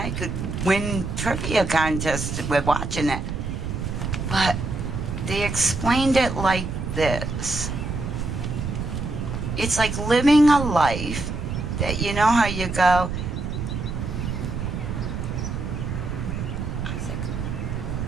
could win trivia contests with watching it. But they explained it like this. It's like living a life that, you know how you go,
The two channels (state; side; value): noise; right; rumble, 4 dB below the sound